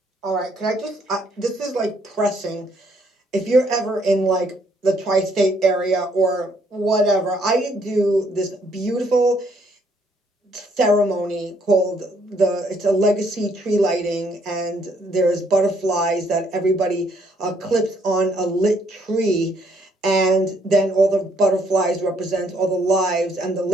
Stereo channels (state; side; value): normal; both; correlation 0.68